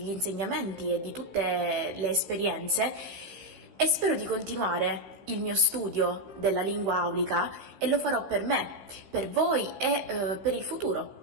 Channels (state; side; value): late; left; 15 ms